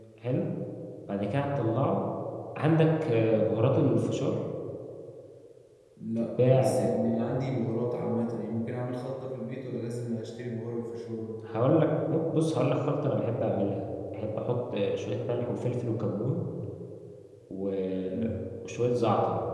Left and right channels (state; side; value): identical; both; correlation 1.00